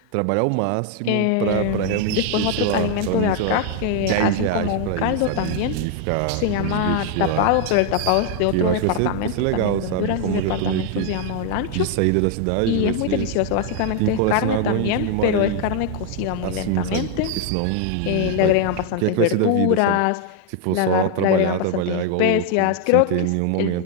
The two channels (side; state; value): both; different; correlation 0.00